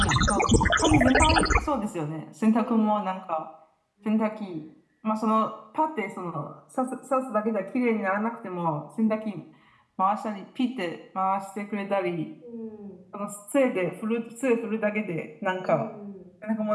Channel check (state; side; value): identical; both; correlation 1.00